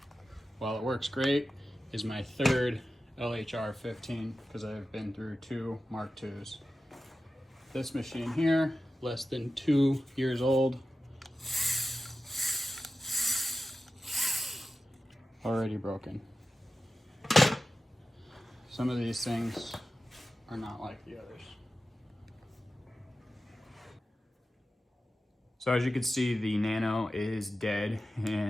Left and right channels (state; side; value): normal; both; correlation 0.93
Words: while it works great, is my third LHR 15 because I've been through 2 Mark IIs. This machine here, less than 2 years old, already broken. Some of these things are not like the others. So as you can see, the Nano is dead.